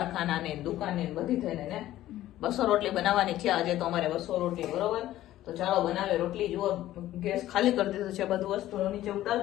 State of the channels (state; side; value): quieter; right; 14.1 dB